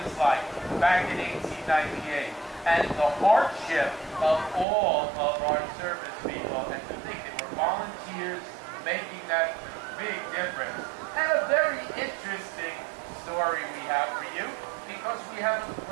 like back in 1898 and the hardship of all of our service people, and to think they were volunteers making that big difference. And a very interesting story we have for you, because we have a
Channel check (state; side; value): drops out; left; at 4.7 s